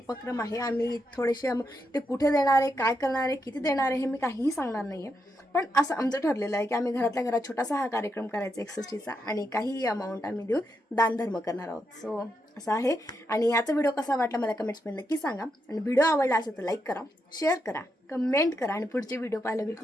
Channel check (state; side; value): normal; both; correlation 0.83